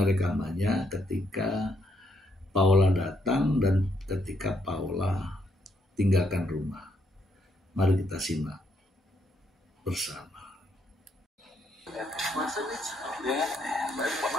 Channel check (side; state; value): both; normal; correlation 0.74